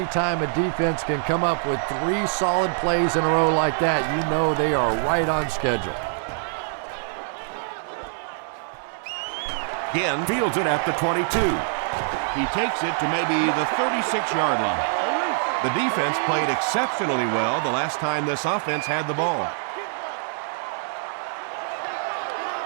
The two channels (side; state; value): left; silent; digital silence